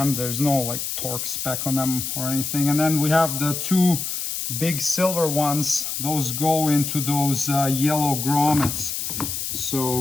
There's no like torque spec on them or anything. And then we have the 2 big silver ones. Those go into those yellow grommets.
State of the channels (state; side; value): noise; left; hiss, 4 dB below the sound